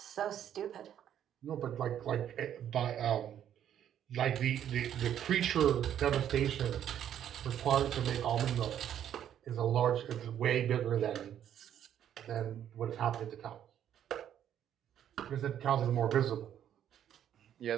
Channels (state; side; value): quieter; left; 10.1 dB